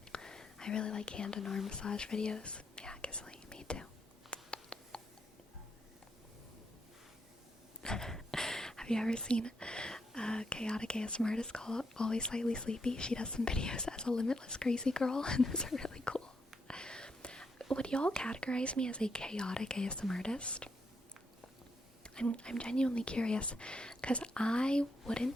I really like hand and arm massage videos. Yeah, Gisley, me too. Have you ever seen chaotic ASMR artist called Always Slightly Sleepy? She does some videos as a limitless crazy girl, and those are really cool. Would y'all categorize me as a chaotic ASMR artist? I'm genuinely curious, because I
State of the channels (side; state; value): both; normal; correlation 0.79